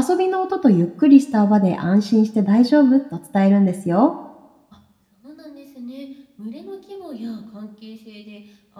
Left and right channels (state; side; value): identical; both; correlation 1.00